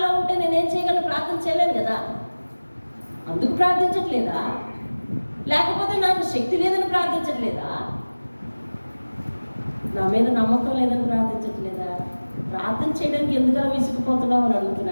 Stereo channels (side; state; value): both; inverted; correlation -1.00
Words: ఉంటే నేనేం చేయగలను? ప్రార్థన చేయలేను కదా, అందుకు ప్రార్థించట్లేదా? లేకపోతే నాకు శక్తి లేదని ప్రార్థించట్లేదా? నా మీద నమ్మకం లేదని ప్రార్థించట్లేదా? ప్రార్థన చేయడానికి ఎందుకలా విసిగిపోతున్నావు అని